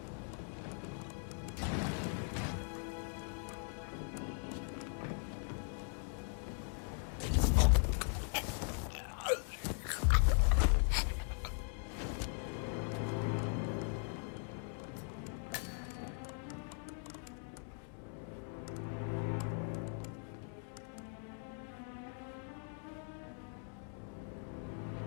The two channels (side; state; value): right; silent; 51 dB below the other